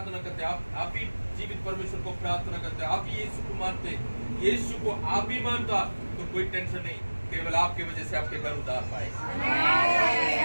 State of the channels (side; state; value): both; inverted; correlation -1.00